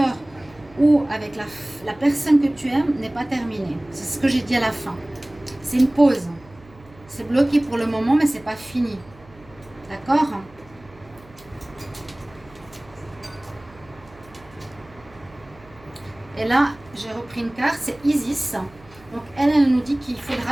ou avec la personne que tu aimes n'est pas terminé. C'est ce que j'ai dit à la fin. C'est une pause. C'est bloqué pour le moment, mais ce n'est pas fini. D'accord ? Et là, j'ai repris une carte, c'est Isis. Donc, elle nous dit qu'il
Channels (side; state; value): right; noise; hum, 24 dB below the sound